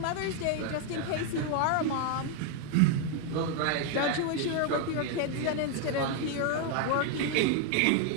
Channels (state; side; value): different; both; correlation 0.01